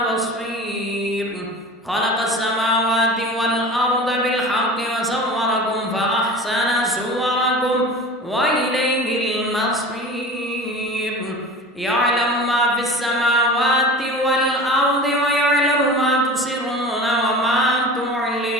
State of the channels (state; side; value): normal; both; correlation 0.36